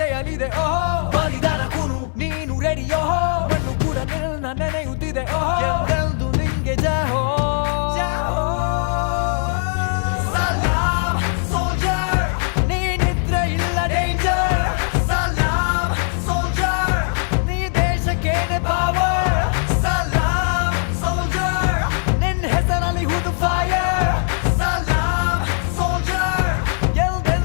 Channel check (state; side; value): silent; right; 57 dB below the other